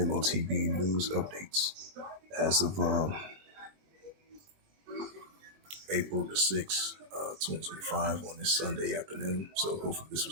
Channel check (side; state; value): left; late; 20 ms